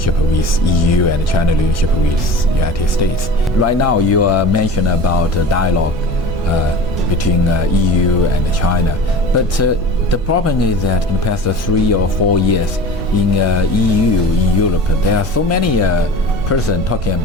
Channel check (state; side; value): normal; both; correlation 0.37